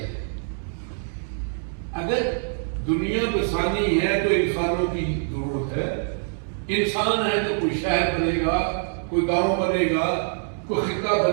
اگر دنیا بسانی ہے تو انسانوں کی ضرورت ہے. انسان ہے تو کوئی شہر بنے گا, کوئی گاؤں بنے گا, کوئی خطہ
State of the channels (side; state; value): left; silent; digital silence